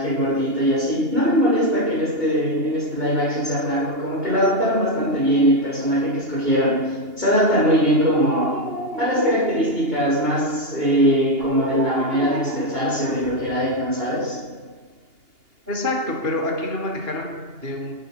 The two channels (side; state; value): left; late; 2.8 ms